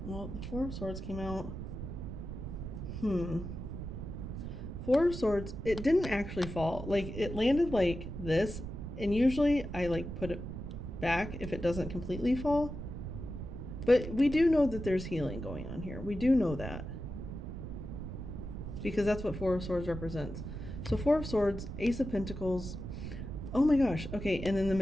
Well, the Four of Swords came out. Four of Swords, it didn't actually fall. Like, it landed like this, and usually I like put it back if it doesn't completely fall. But we do know that there's healing going on here. We do know that. Because that's what Four of Swords represents. So Four of Swords, Ace of Pentacles. Oh my gosh. Okay, and then the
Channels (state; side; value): noise; right; rumble, 7 dB below the sound